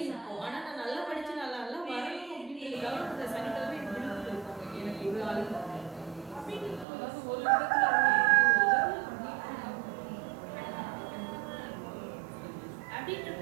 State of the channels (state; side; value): drops out; left; at 6.9 s